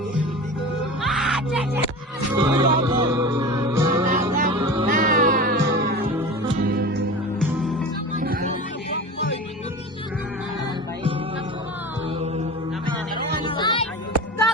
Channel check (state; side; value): normal; both; correlation 0.32